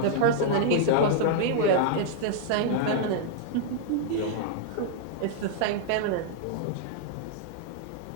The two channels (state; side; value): different; both; correlation -0.01